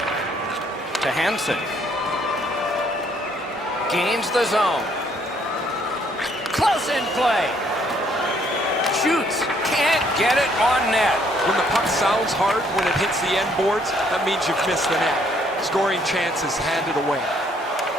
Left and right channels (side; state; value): both; normal; correlation 0.66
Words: To Hansen. Gains the zone. Close in play. Shoots. Can't get it on net. When the puck sounds hard, when it hits the end boards, that means you've missed the net. Scoring chances handed away.